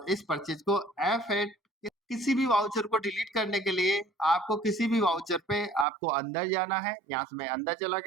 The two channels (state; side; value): drops out; left; at 5.9 s